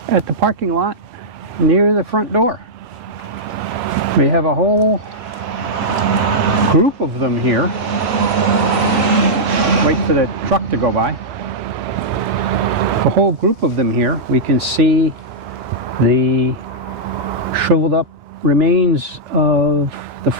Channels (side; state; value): both; normal; correlation -0.08